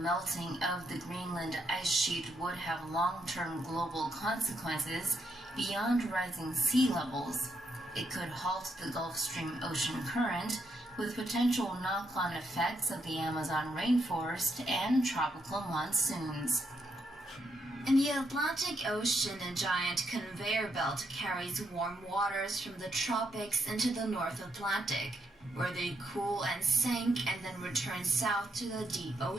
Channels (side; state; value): both; normal; correlation 0.78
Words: of the Greenland ice sheet would have long-term global consequences beyond rising sea levels. It could halt the Gulf Stream ocean current, with potential knock-on effects of the Amazon rainforest and tropical monsoons. In the Atlantic Ocean, a giant conveyor belt carries warm waters from the tropics into the North Atlantic, where they cool and sink and then return south to the deep